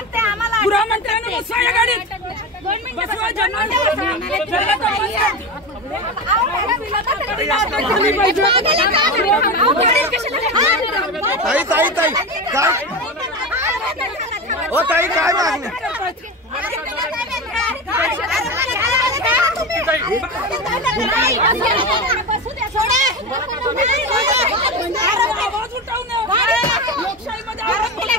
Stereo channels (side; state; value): both; normal; correlation 0.22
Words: गृहमंत्र्यांनी बसवा या गाडीत बसवा ताई ताई ताई काय ओ ताई काय मागणी